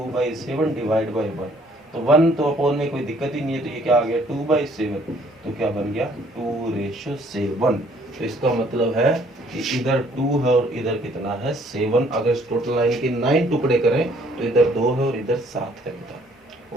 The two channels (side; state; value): both; normal; correlation 0.61